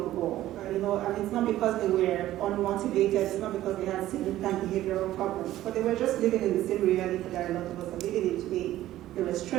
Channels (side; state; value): left; quieter; 14.3 dB